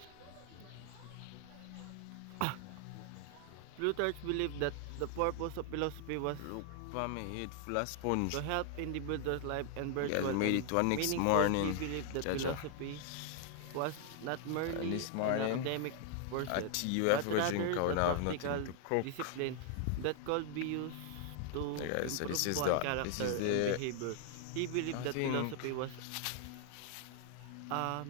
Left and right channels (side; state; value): both; different; correlation 0.00